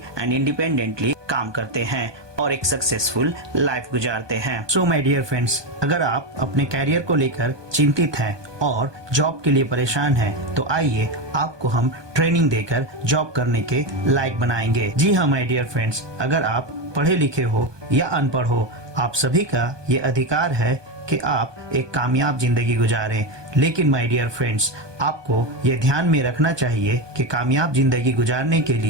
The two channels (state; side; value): late; left; 1.2 ms